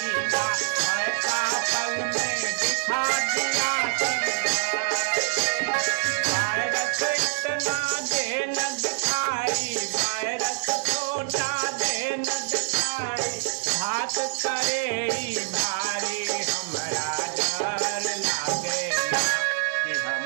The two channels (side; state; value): left; silent; digital silence